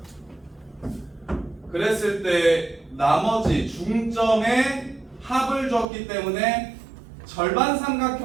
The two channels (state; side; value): drops out; left; at 5.9 s